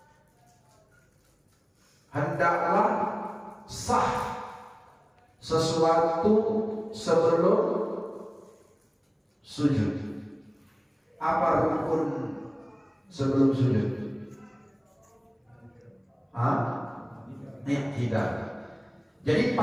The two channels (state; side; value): identical; both; correlation 1.00